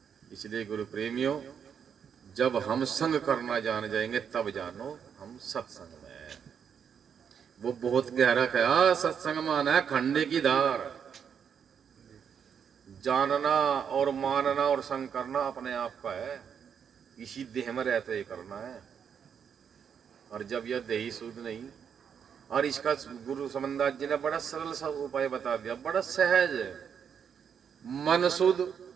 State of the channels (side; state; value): left; quieter; 7.5 dB